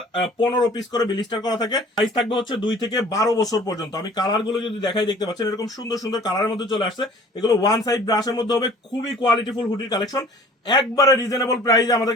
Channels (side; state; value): both; normal; correlation 0.49